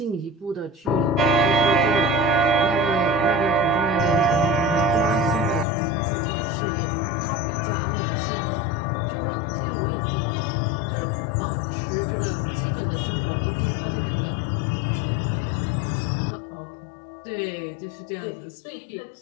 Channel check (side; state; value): right; drops out; at 5.7 s